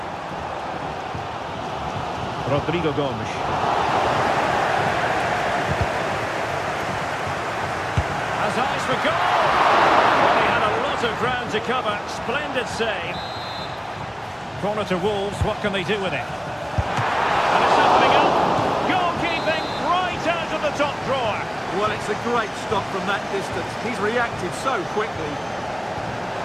Rodrigo Gomes. Has eyes for goal! Well, he had a lot of ground to cover. Splendid save. Corner to Wolves. What can they do with it? And it's opening up. Goalkeeping right out of the top drawer. Well, it's a great stop from that distance. He's reacted so quickly.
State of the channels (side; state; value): both; identical; correlation 1.00